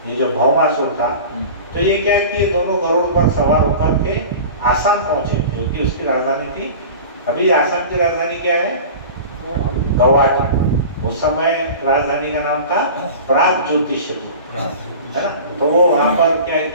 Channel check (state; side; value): inverted; both; correlation -0.36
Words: ये जो भौमासुर था। तो ये क्या किए, दोनों गरुड़ पर सवार होकर के आसाम पहुंचे, जो कि उसकी राजधानी थी। अभी आसाम की राजधानी क्या है? गुवाहाटी। उस समय राजधानी का नाम था प्राग ज्योतिषपुर, है ना। तो वो वहां पर क्या